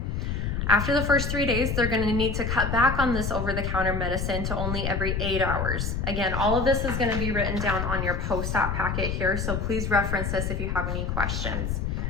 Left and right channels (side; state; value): left; noise; rumble, 1 dB below the sound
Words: After the first 3 days, they're going to need to cut back on this over-the-counter medicine to only every 8 hours. Again, all of this is going to be written down on your post-op packet here, so please reference this if you have any questions.